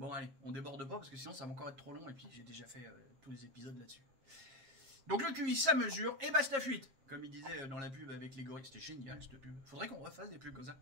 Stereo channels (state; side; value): late; left; 7.3 ms